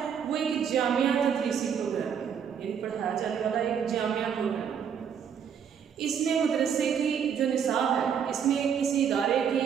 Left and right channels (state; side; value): quieter; left; 7.7 dB